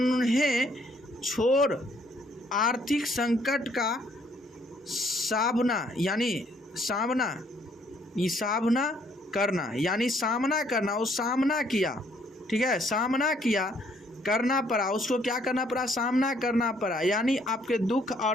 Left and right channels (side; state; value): both; normal; correlation 0.66